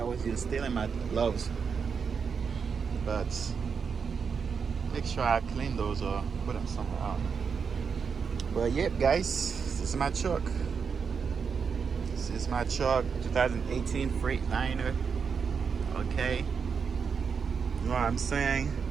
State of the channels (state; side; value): quieter; left; 6.0 dB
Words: was here stealing my gloves. But make sure I clean those or put them somewhere else. But yep, guys, this is my truck. This is my truck, 2018 Freightliner. Okay, you know what I'm saying?